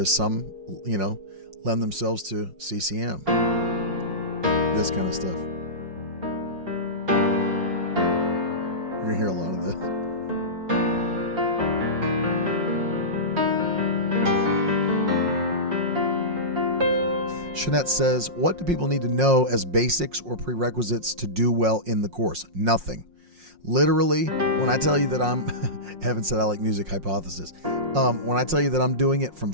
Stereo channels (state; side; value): late; left; 5.6 ms